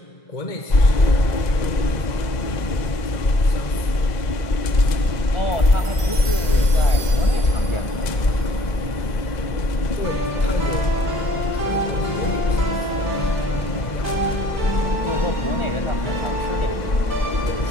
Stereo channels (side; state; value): right; late; 2.0 ms